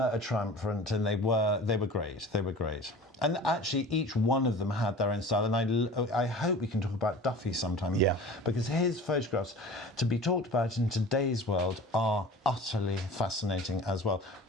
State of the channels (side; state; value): both; normal; correlation 0.40